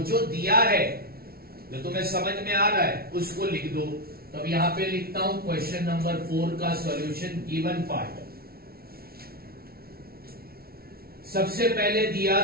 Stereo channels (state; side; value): late; left; 0.44 ms